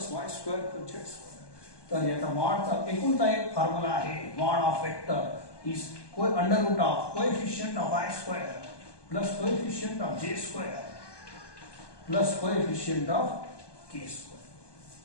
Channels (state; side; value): late; right; 1.2 ms